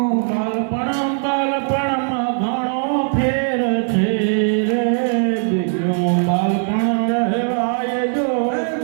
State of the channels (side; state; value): left; silent; 60 dB below the other